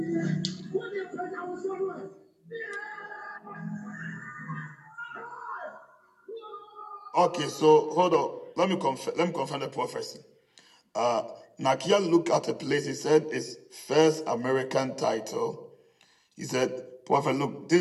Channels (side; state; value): both; identical; correlation 1.00